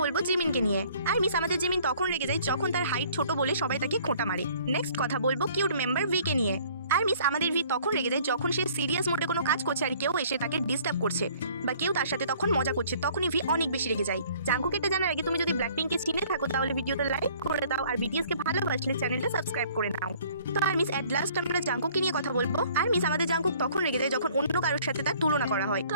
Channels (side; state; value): both; inverted; correlation -0.56